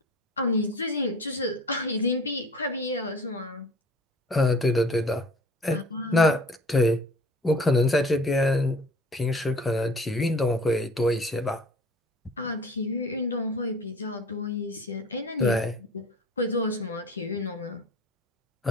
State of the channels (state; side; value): normal; both; correlation 0.46